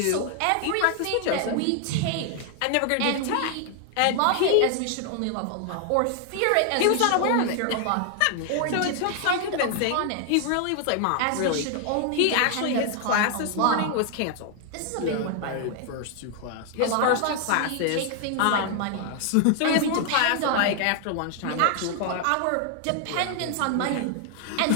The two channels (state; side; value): different; both; correlation 0.00